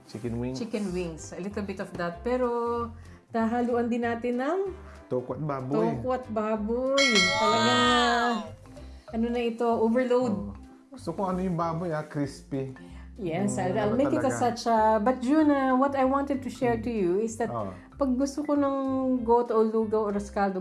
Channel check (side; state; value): both; identical; correlation 1.00